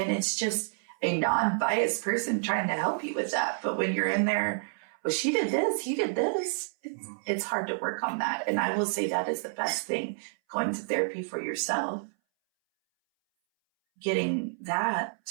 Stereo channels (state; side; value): silent; left; 58 dB below the other